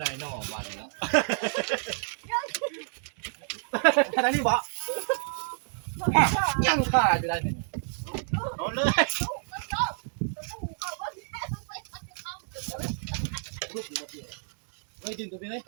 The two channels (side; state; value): left; silent; 58 dB below the other